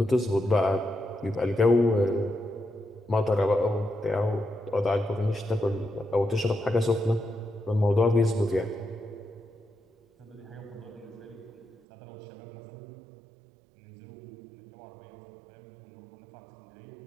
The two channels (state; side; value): drops out; left; at 11.8 s